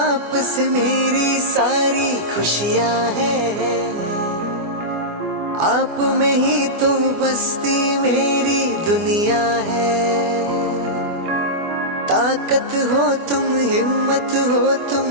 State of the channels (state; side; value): late; left; 24 ms